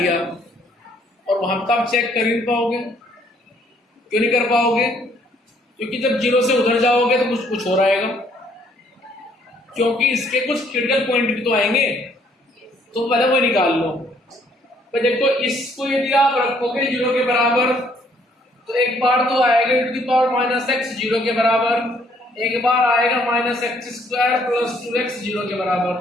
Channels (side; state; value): both; normal; correlation 0.65